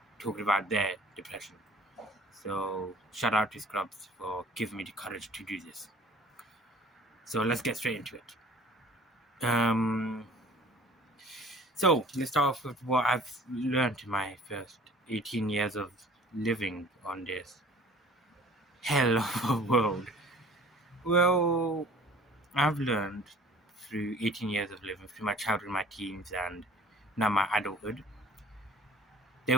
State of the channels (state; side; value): normal; both; correlation 0.49